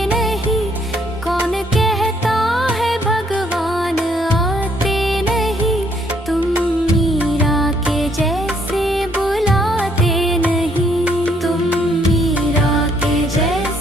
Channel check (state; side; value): normal; both; correlation 0.68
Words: नहीं, कौन कहता है भगवान आते नहीं, तुम मीरा के जैसे बुलाते नहीं, तुम मीरा के